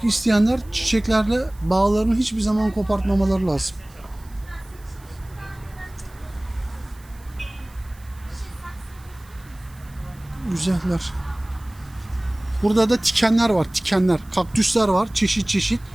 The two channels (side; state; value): right; noise; hiss, 26 dB below the sound